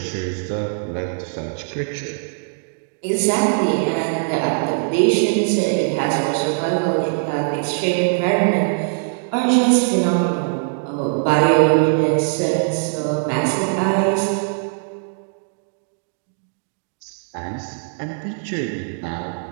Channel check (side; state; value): left; silent; digital silence